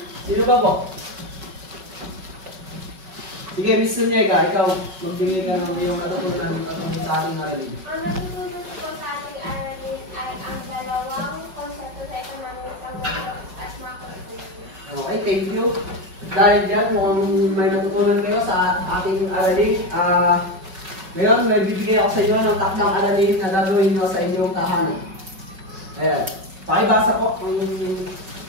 Sino pa po? Sige, Miss Sunyega, ikaw, magbigay ka ng iyong natutunan sa ating aralin. Ang natutunan ko sa ating aralin ay ang dalawang konsepto sa economics, ang micro at macroeconomics. Okay, thank you. Dahil dyan, mukhang may natutunan kayo sa ating aralin. Ngayon, may bibigay ako sa inyo ng takdang aralin na gagawin nyo sa inyong tahanan. Ayan. Pakibasa po ang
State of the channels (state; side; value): late; left; 5.4 ms